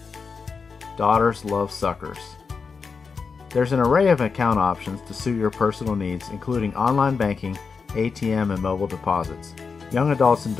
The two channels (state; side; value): quieter; right; 5.2 dB